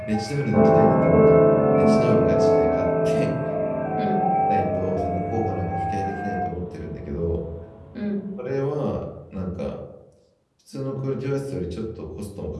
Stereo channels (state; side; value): identical; both; correlation 1.00